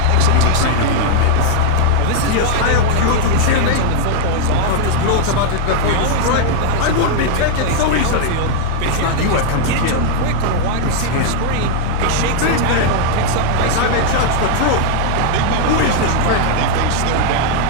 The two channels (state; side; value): different; both; correlation -0.01